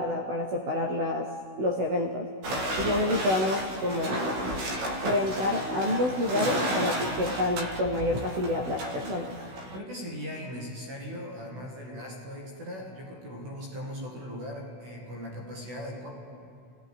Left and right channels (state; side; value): late; left; 16 ms